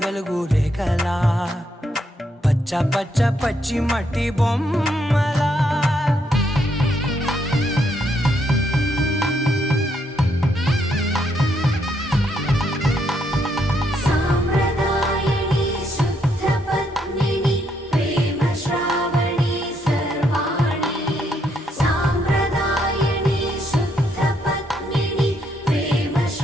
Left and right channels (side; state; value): both; normal; correlation 0.75